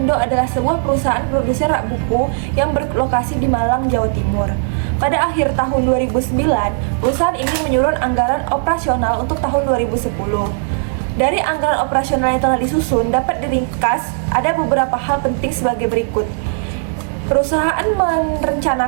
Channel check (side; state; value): left; silent; digital silence